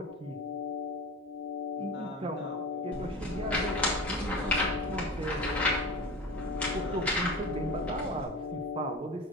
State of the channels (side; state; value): both; normal; correlation 0.31